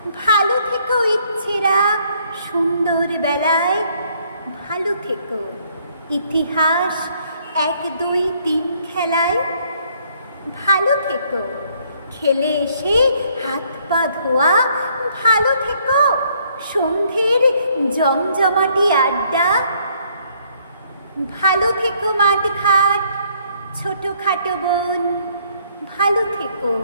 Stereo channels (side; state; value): both; inverted; correlation -0.66